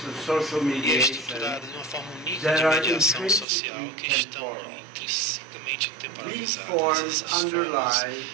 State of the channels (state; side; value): drops out; left; at 3.5 s